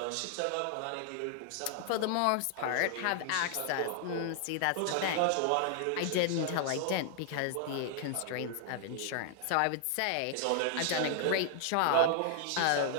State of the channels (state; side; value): different; both; correlation 0.00